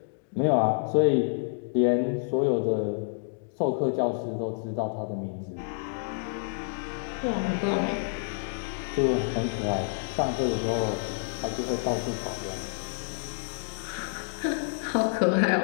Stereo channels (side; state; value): right; silent; digital silence